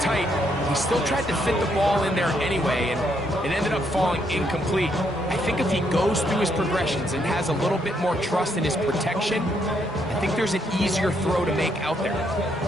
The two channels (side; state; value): both; normal; correlation 0.74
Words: he still tried to fit the ball in there anyway, and it ended up falling incomplete. I think if he goes through his progressions and has a little bit more trust in his protection, I think there's an easier throw to make out there.